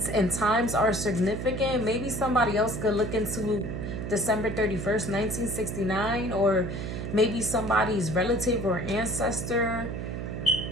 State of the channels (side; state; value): right; noise; hum, 5 dB below the sound